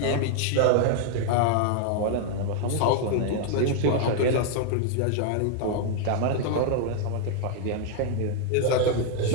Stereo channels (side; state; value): both; different; correlation 0.00